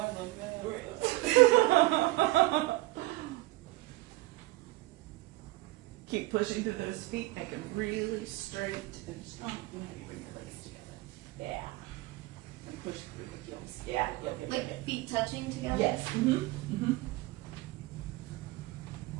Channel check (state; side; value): quieter; left; 19.6 dB